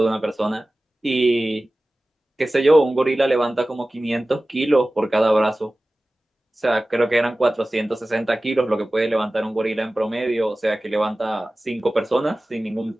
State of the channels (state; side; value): normal; both; correlation 0.97